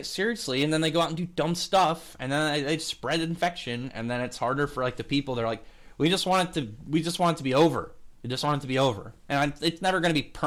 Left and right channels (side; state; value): both; identical; correlation 1.00